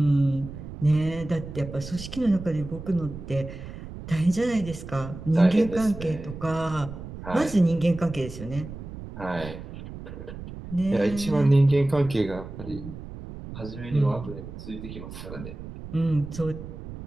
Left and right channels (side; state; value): right; noise; rumble, 11 dB below the sound